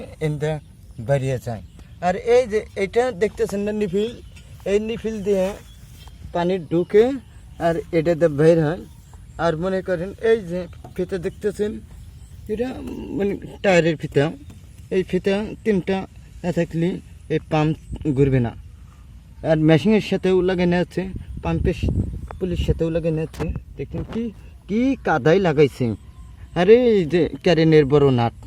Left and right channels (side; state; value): both; identical; correlation 1.00